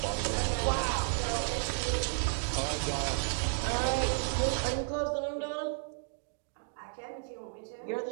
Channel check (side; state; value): left; silent; digital silence